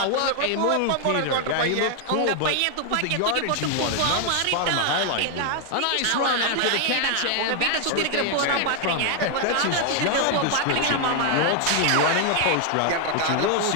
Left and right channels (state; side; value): different; both; correlation 0.00